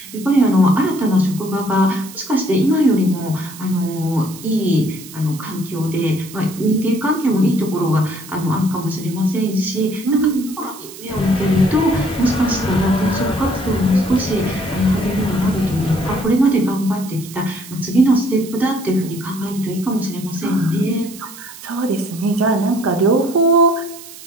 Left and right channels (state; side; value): noise; right; hiss, 16 dB below the sound